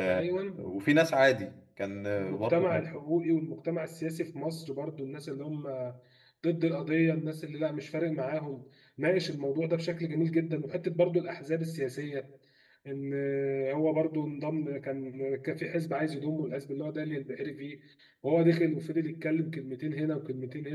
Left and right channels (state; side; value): identical; both; correlation 1.00